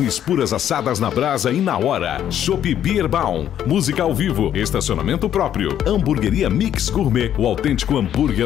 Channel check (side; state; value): right; quieter; 10.4 dB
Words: puras assadas na brasa e na hora. Chopp Bierbaum, música ao vivo, estacionamento próprio. Hamburgueria Mix Gourmet, o autêntico